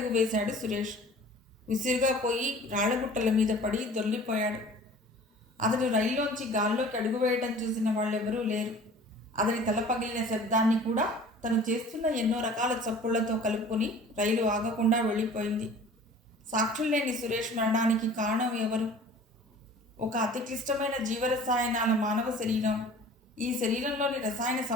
వేశాడు సురేష్. విసురుగా పోయి రాళ్లగుట్టల మీద పడి దొర్లిపోయాడు. అతడు రైల్లోంచి గాల్లోకి అడుగు వేయటం చూసిన వాళ్ళెవరూ లేరు. అతని తల పగిలిన శబ్దాన్ని కూడా తను చేస్తున్న ఎన్నో రకాల చప్పుళ్లతో కలుపుకొని రైలు ఆగకుండా వెళ్ళిపోయింది. సాక్షులు లేని సురేష్ మరణానికి కారణం ఎవరు? ఒక అతి క్లిష్టమైన జీవరసాయనాల మానవ శరీరం. ఈ శరీరంలోని రసాయన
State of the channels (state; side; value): normal; both; correlation 0.46